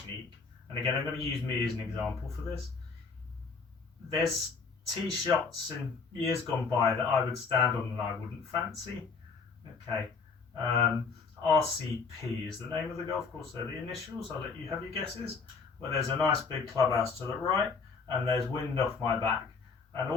And again, I'm going to use me as an example for this. There's tee shots in years gone by that I would stand on and I wouldn't fancy. Okay. RCP is the name of the golf course. They're the initials. I'll let you have your guesses. Where there's a nice big clubhouse to the right and there's wind off my back. And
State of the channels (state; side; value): quieter; right; 5.0 dB